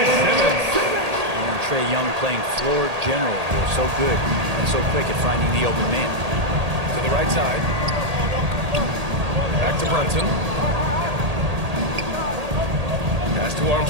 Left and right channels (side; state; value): left; late; 1.8 ms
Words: Simmons. And Trae Young playing floor general here. So good and so quick at finding the open man. To the right side. Back to Brunson. Pass to